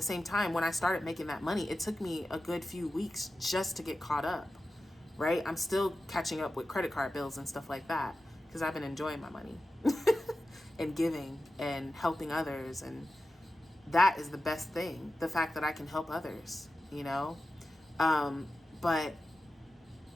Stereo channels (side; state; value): both; normal; correlation 0.93